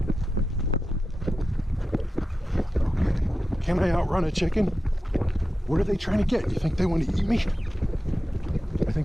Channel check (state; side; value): normal; both; correlation 0.92